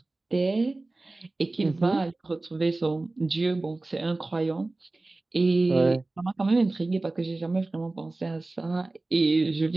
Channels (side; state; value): left; quieter; 3.1 dB